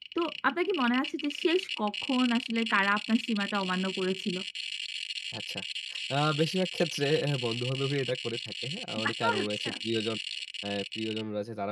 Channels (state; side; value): identical; both; correlation 1.00